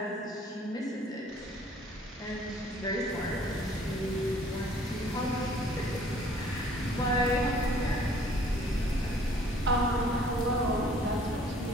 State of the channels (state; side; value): normal; both; correlation 0.57